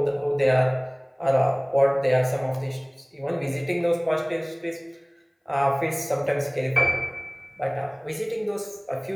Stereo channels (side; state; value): both; identical; correlation 1.00